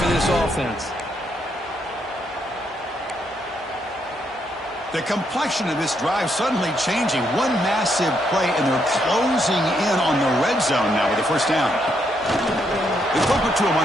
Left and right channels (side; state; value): both; normal; correlation 0.76